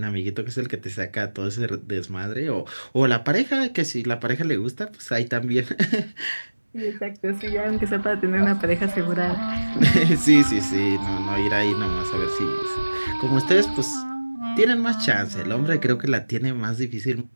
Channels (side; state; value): both; inverted; correlation -1.00